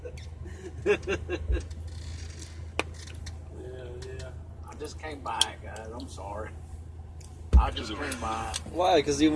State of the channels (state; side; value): identical; both; correlation 1.00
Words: yeah. I just came by it, guys. I'm sorry. I just came by it. Why? Because you